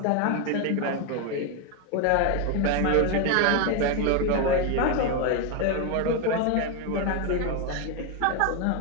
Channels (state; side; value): different; both; correlation 0.01